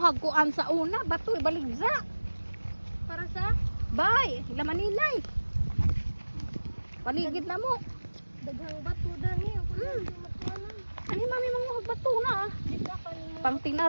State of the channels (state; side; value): inverted; both; correlation -1.00